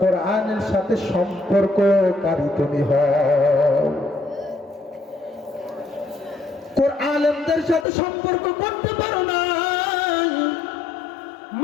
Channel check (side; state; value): right; drops out; at 7.9 s